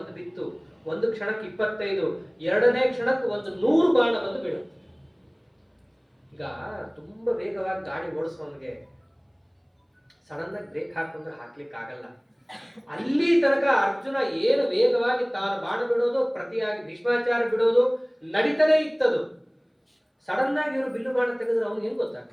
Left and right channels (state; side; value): identical; both; correlation 1.00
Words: ಬಿತ್ತು. ಒಂದು ಕ್ಷಣಕ್ಕೆ 25, ಎರಡನೇ ಕ್ಷಣಕ್ಕೆ 100 ಬಾಣ ಬಂದು ಬೀಳುತ್ತೆ. ಈಗ ತುಂಬಾ ವೇಗವಾಗಿ ಗಾಡಿ ಓಡಿಸೋನ್ಗೆ ಸಡನ್ ಆಗಿ ಬ್ರೇಕ್ ಹಾಕೊಂಡ್ರೆ ಹಾಕ್ಲಿಕ್ಕೆ ಆಗಲ್ಲ. ಅಲ್ಲಿ ತನಕ ಅರ್ಜುನ ಏನು ವೇಗವಾಗಿ ತಾನು ಬಾಣ ಬಿಡೋದು, ಪ್ರತಿಯಾಗಿ ಭೀಷ್ಮಾಚಾರ್ಯ ಬಿಡೋದು ನಡೀತಾನೆ ಇತ್ತದು. ಸಡನ್ ಆಗಿ ಇವರು ಬಿಲ್ಲು ಬಾಣ ತೆಗೆದ್ರೆ ಅವನು ಏನ್